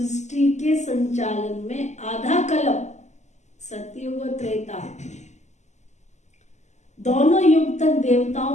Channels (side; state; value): right; late; 0.33 ms